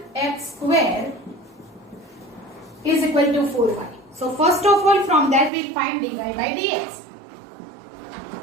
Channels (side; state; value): left; drops out; at 5.5 s